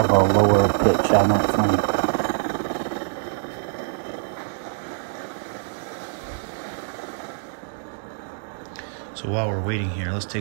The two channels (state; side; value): silent; left; digital silence